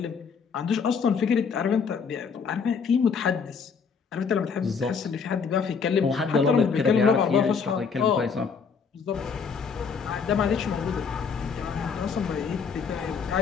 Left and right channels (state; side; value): quieter; right; 5.9 dB